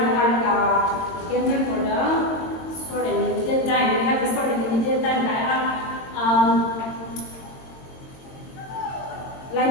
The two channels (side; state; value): right; late; 22 ms